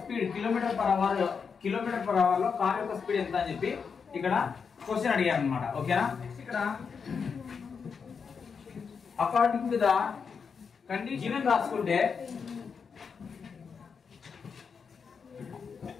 స్పీడ్ కిలోమీటర్ పర్ అవర్ లో కార్ యొక్క స్పీడ్ ఎంత అని చెప్పి ఇక్కడ క్వశ్చన్ అడిగారు అనమాట. ఓకేనా? ఇక్కడ అకార్డింగ్ టు ద కండిషన్ రాసుకుంటే,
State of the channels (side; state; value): right; quieter; 5.9 dB